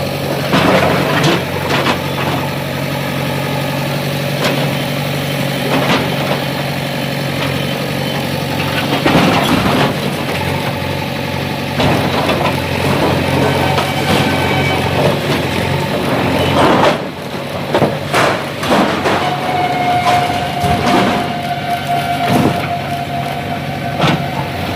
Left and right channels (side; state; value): both; identical; correlation 1.00